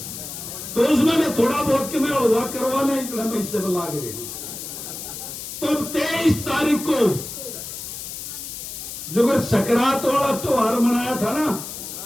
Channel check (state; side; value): noise; left; hiss, 9 dB below the sound